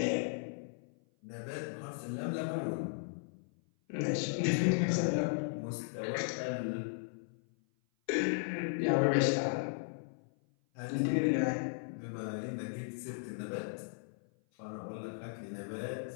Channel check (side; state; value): right; silent; 54 dB below the other